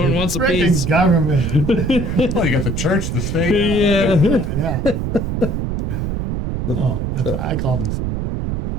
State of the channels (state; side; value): noise; right; rumble, 2 dB below the sound